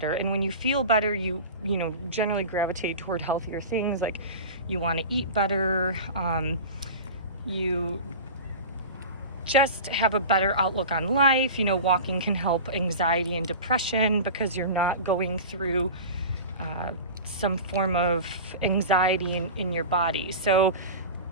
And when you feel better, you generally gravitate toward healthier things. Like you want to eat better. You just have a better outlook on life. Walking can help anxiety and depression because you're not going through some form of anxiety in your body. So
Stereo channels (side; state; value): both; inverted; correlation -0.31